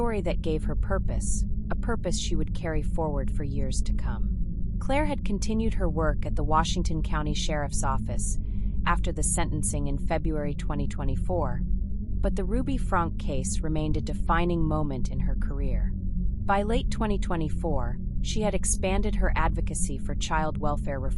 that gave her purpose, a purpose she would carry forward for years to come. Claire had continued her work at the Washington County Sheriff's Office after the sentencing in February 2024, but the Ruby Franke case remained a defining moment in her career. By late 2024, she had expanded her advocacy for child welfare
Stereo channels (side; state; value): both; identical; correlation 1.00